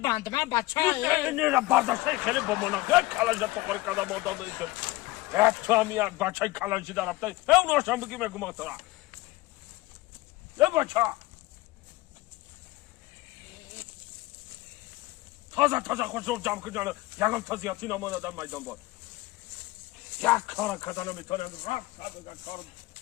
من بچه نیره برداشته خیلی با مناخه کلاش تاغری کده مانده دیگه تو هم یک بچه کلاشی در رفته همونو هاشم بگی مگه مطرق یه بچه تازه خوش رو جمع کنجانه یکم تازیاتی نمان آدم میدان بود یک کار کدانه میتونه رفت بگن کار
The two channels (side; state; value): right; quieter; 19.8 dB